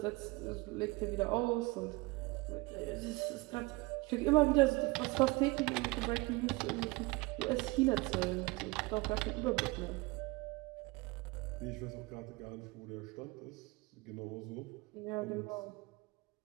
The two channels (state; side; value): quieter; left; 23.9 dB